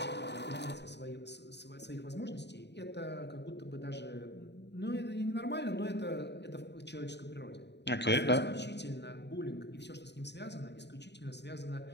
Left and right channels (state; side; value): late; right; 0.50 ms